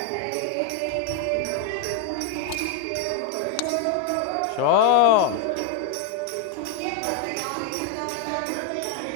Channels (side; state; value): both; different; correlation 0.01